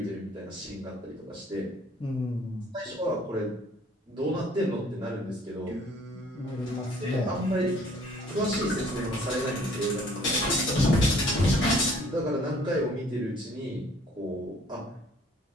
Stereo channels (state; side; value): normal; both; correlation 0.57